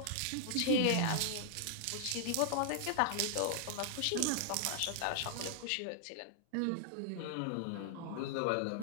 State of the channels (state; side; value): different; both; correlation -0.01